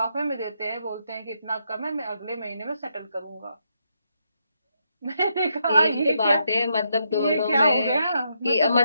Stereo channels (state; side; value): inverted; both; correlation -0.79